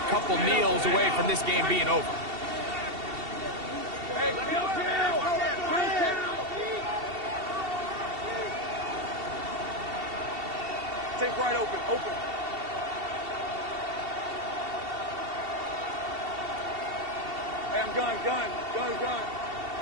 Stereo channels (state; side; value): late; left; 2.7 ms